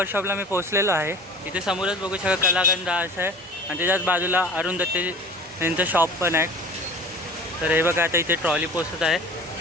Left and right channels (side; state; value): both; normal; correlation 0.42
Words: मी पोहोचलेलो आहे. इथे समोरच बघू शकता कलागंध असं आहे आणि त्याच्याच बाजूला अरुण दत्ते यांचं शॉप पण आहे. तर हे बघा, आता इथे ट्रॉली पोचत आहे.